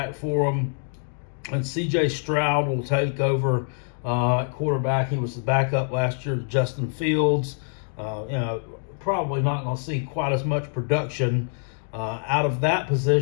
for them, and C.J. Stroud will take over at quarterback. He was the backup last year to Justin Fields. Probably not going to see quite as much production out of that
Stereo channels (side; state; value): right; silent; digital silence